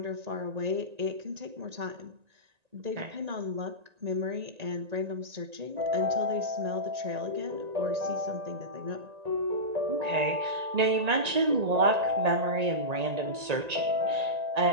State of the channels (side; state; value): left; late; 1.9 ms